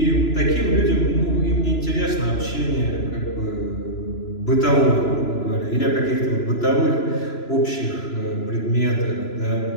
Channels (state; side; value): late; right; 3.0 ms